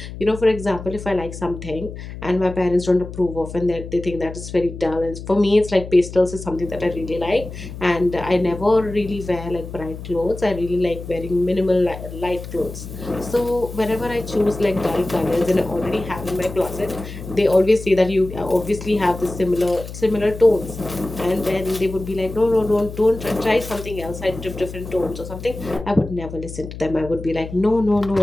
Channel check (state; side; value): noise; left; hum, 11 dB below the sound